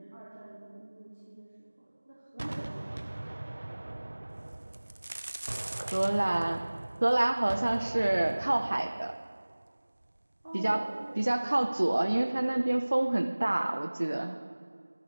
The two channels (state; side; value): inverted; both; correlation -1.00